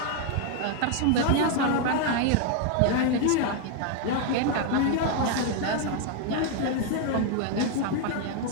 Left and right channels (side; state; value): both; different; correlation 0.01